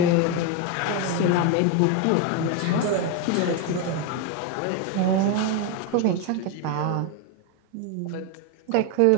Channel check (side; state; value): both; different; correlation 0.02